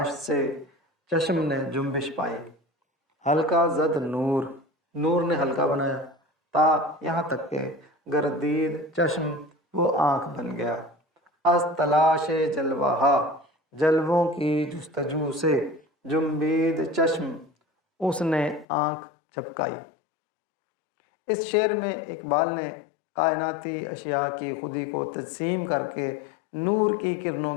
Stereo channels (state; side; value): drops out; right; at 18.7 s